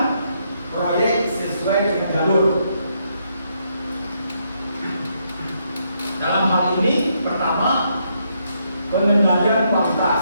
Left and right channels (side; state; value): both; inverted; correlation -0.76